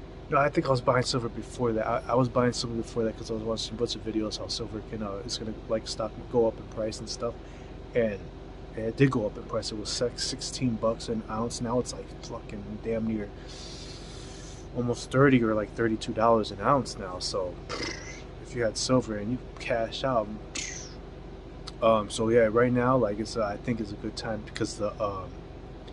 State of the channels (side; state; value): both; identical; correlation 1.00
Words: No, I think I was buying silver before that. I was buying silver before that because I was watching a bunch of videos how silver can, it's gonna like stock go up in price and stuff. And it did go up in price. It was $16 an ounce. Now it's like fucking damn near almost 30 or like $32 an ounce now. So if you had silver and you cash out, so yeah, right now, like it's I think it's a good time because the